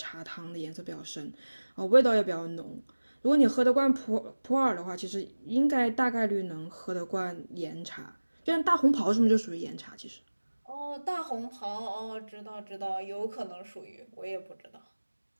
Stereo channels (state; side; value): inverted; both; correlation -1.00